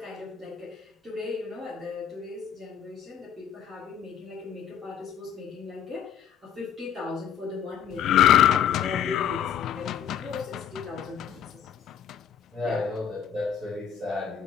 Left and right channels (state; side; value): quieter; right; 8.7 dB